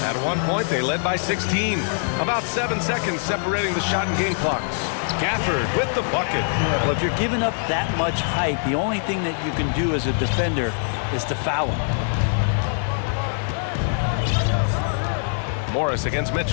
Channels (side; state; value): right; silent; digital silence